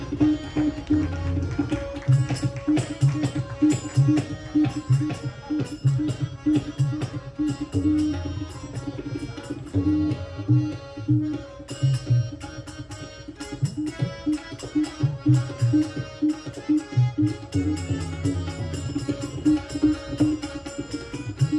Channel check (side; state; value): both; identical; correlation 1.00